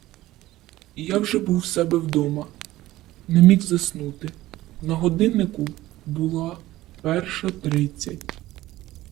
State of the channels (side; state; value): left; quieter; 16.3 dB